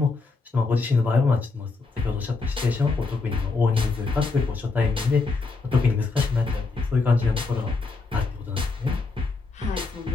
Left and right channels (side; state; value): right; quieter; 4.0 dB